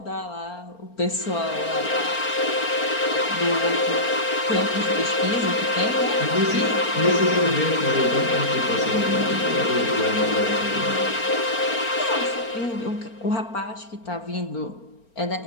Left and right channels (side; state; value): right; late; 4.4 ms